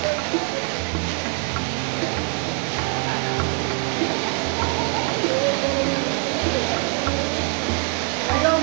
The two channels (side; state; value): left; quieter; 35.4 dB